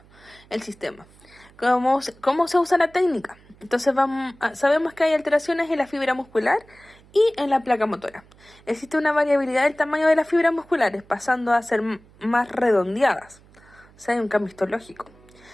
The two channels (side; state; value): right; noise; hum, 27 dB below the sound